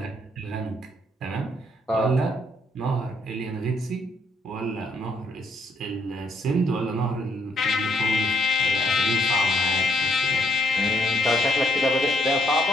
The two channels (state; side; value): normal; both; correlation 0.70